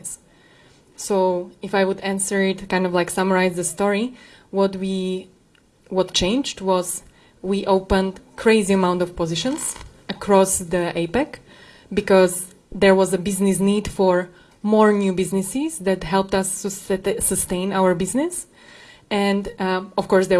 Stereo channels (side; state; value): both; identical; correlation 1.00